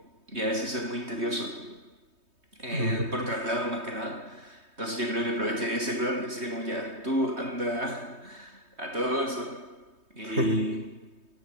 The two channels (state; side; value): late; left; 3.2 ms